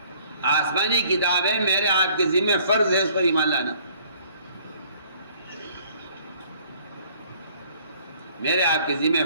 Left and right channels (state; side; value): inverted; both; correlation -0.58